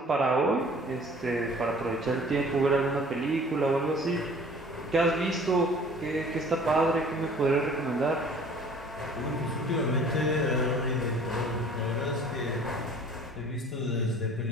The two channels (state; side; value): normal; both; correlation 0.50